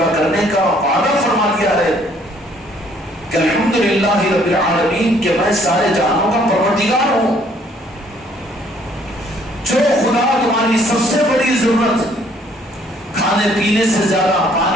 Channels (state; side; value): normal; both; correlation 0.62